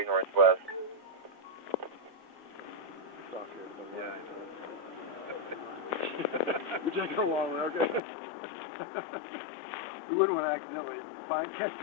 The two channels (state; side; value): drops out; right; at 8.0 s